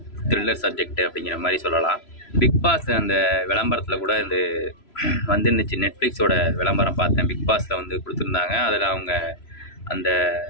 த்ரில்லர் சப்ஜெக்ட் அப்படிங்கிற மாதிரி சொல்லலாம். பிக் பாஸ் அந்த விளம்பரத்தில் கூட இந்த வந்துருந்துச்சு. நெட்ஃப்ளிக்ஸோட விளம்பரம் பார்த்தேன். பிக் பாஸில் வந்து கொடுத்துருந்தாங்க. அதில் அவங்க அந்த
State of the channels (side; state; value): right; late; 3.0 ms